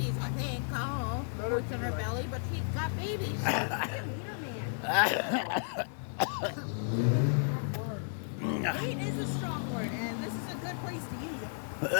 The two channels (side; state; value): right; silent; digital silence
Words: I think. Oh, Let her what's in be her like- belly, but she's got babies. Weight is a strong word, and this is a good place to use it.